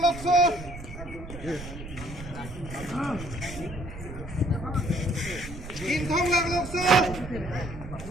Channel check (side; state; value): right; noise; rumble, 12 dB below the sound